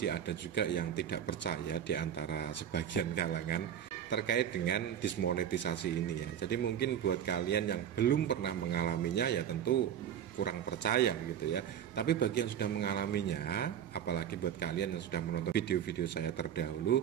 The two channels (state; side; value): quieter; left; 9.4 dB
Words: ada juga yang tidak percaya di antara sebagian kalangan terkait dengan dismonetisasi ini ya. Jadi mungkin buat kalian yang belum pernah mengalaminya ya tentu kurang percaya gitu ya. Tapi bagi yang sudah mengalaminya, apalagi buat kalian yang sudah menonton video-video saya